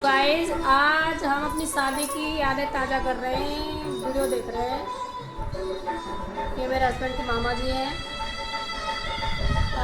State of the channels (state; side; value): identical; both; correlation 1.00